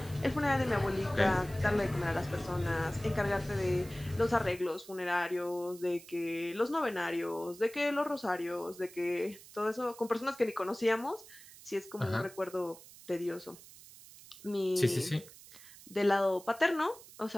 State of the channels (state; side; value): noise; right; hiss, 19 dB below the sound